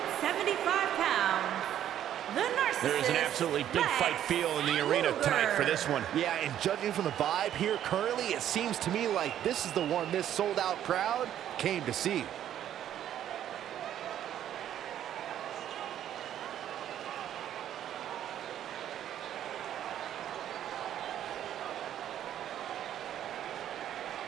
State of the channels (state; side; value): quieter; left; 10.9 dB